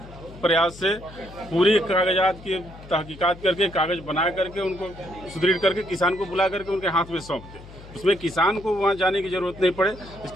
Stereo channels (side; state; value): left; noise; hum, 18 dB below the sound